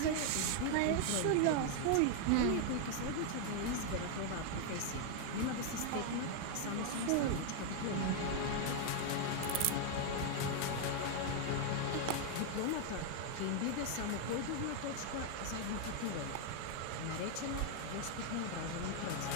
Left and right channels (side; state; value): both; different; correlation 0.00